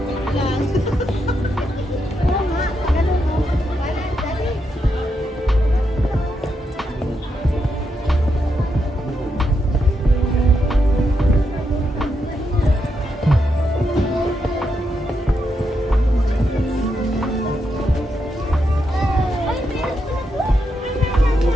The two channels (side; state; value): both; normal; correlation 0.82